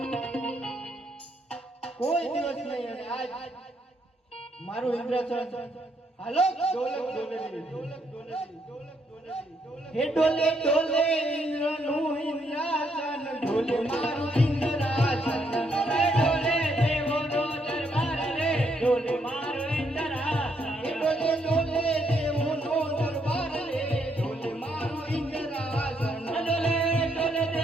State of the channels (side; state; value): both; normal; correlation 0.74